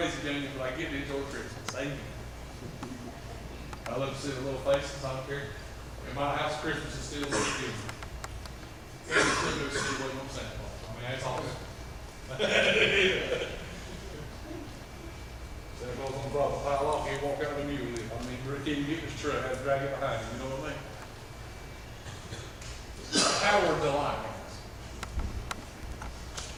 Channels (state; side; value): identical; both; correlation 1.00